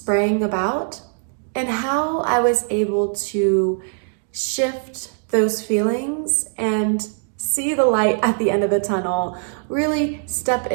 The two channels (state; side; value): silent; left; digital silence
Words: about and how I was able to shift those feelings and see the light at the end of the tunnel, really step